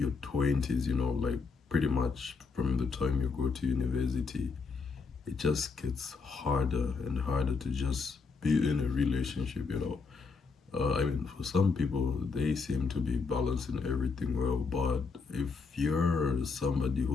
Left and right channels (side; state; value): right; quieter; 4.6 dB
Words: 20s, like pretty much from the time you go to university, it just gets harder and harder to just be in a relationship. I mean, for some people, they seem to be balancing everything well, but if you're somebody